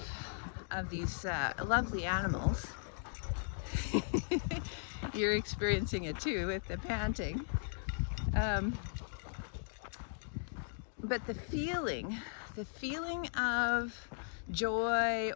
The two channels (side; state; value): right; silent; digital silence